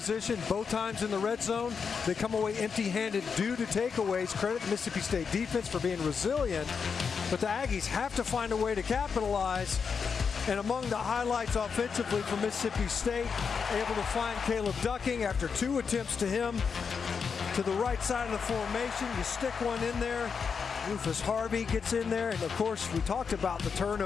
both times in the red zone. They come away empty-handed due to takeaways. Credit the Mississippi State defense for being resilient, but the Aggies have to find a way to capitalize. And among the highlights offensively for Mississippi State, able to find Caleb Ducking after 2 attempts to him to the right side of the formation. You stick one in there. Rufus Harvey gets in there. And, of course, we talked about the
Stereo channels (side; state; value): right; quieter; 5.9 dB